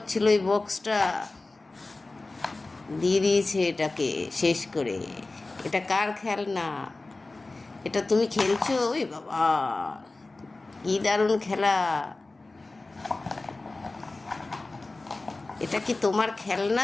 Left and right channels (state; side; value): quieter; right; 3.2 dB